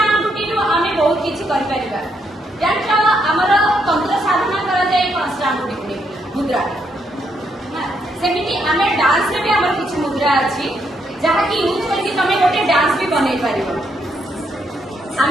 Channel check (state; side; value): normal; both; correlation 0.76